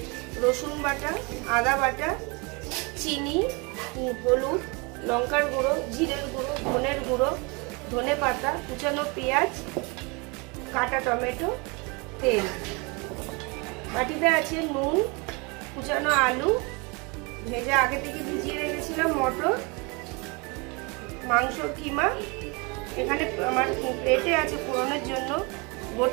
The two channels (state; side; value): quieter; left; 29.2 dB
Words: रसुन बाटा, आदा बाटा, चीनी, हलुद, लंकार गुड़ो, जिरेर गुड़ो, धनेर गुड़ो, धने पाता, कुचानो पेঁয়াজ, काटा टमेटो, तेल। बाटीते आछे नुन, कुचानो आलू, भेजा आगे थेके भिजिए रेखेछिलाम मटर, मांसर किमा। एखाने आमार प्लेटे आछे फोड़নের জন্য